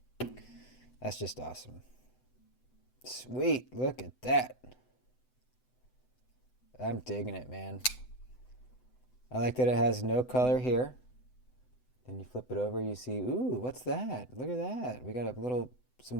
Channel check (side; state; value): right; late; 7.9 ms